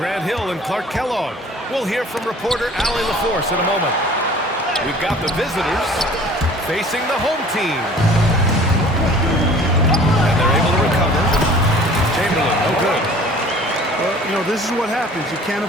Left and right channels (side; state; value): both; normal; correlation 0.48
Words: Hill and Clark Kellogg. We'll hear from reporter Allie LaForce in a moment. We've got the visitors facing the home team. And they're able to recover. Chamberlain, no good. Well, you know, this is what happens. You can't